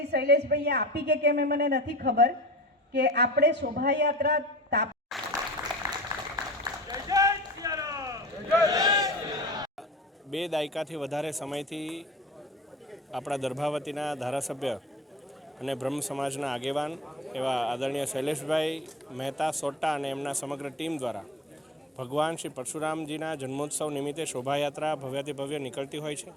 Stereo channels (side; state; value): both; normal; correlation 0.37